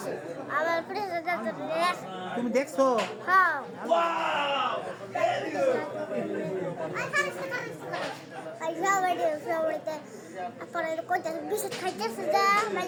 আবার পুলিশ তুমি দেখছো হ্যাঁ Ay, para el coche, bisa kaca sudah,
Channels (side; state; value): both; identical; correlation 1.00